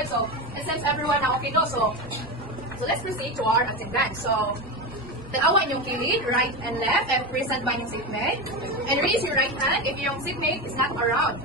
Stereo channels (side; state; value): both; normal; correlation 0.18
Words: So, it seems everyone na okay, no? So let's proceed to our attendance. So, tanawa inyong kilid, right and left, and present by yung seatmate. And raise your right hand if yung seatmate is not around.